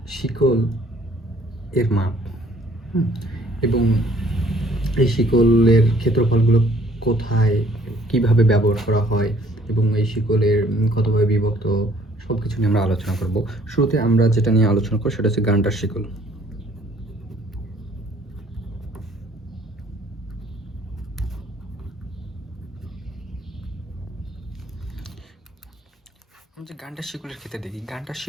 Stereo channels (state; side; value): normal; both; correlation 0.59